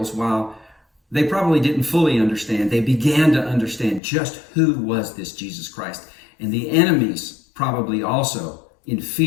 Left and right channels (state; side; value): drops out; right; at 4.0 s